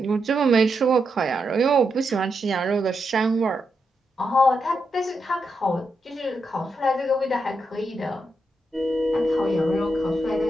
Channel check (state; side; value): normal; both; correlation 0.84